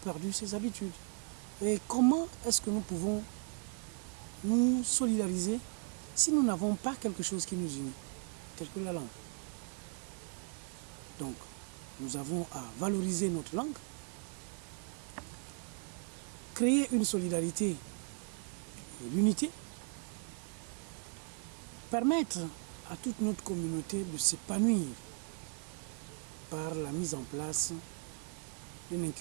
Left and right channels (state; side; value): quieter; left; 36.7 dB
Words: ces habitudes. Et comment est-ce que nous pouvons nous solidariser si nous n'avons pas quelque chose qui nous unit, tel que la langue? Donc, nous avons à valoriser notre langue, créer une solidarité et l'unité, permettre à toute notre communauté de s'épanouir par la mise en place d'un